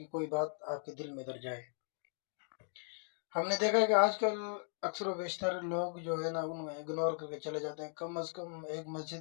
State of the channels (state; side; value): silent; right; 53 dB below the other